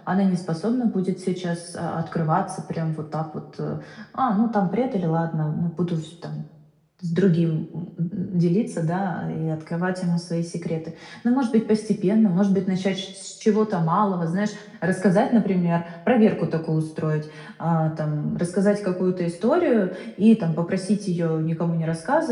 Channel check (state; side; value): identical; both; correlation 1.00